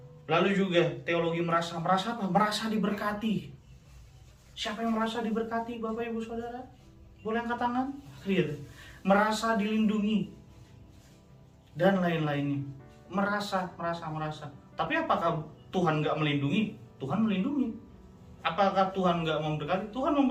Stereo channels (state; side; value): identical; both; correlation 1.00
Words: Lalu juga teologi merasa apa? Merasa diberkati. Siapa yang merasa diberkati, Bapak Ibu Saudara? Boleh angkat tangan? Gitu. Merasa dilindungi dan lain-lainnya. Merasa. Tapi apakah Tuhan nggak melindungi? Tuhan melindungi. Apakah Tuhan nggak memberkati? Tuhan